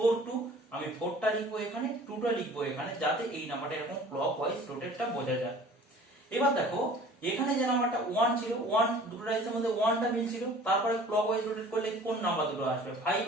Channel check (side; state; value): both; normal; correlation 0.48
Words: 2, আমি 4টা লিখবো এখানে, 2টা লিখবো এখানে, যাতে এই নাম্বারটা এরকম ক্লক ওয়াইজ রোটেটটা বোঝা যায়। এবার দেখো এখানে যে নাম্বারটা 1 ছিল, 1 দুটো ডাইসের মধ্যে 1টা মিলছিল, তারপরে ক্লক ওয়াইজ রোটেট করলে কোন নাম্বার দুটো আসবে, 5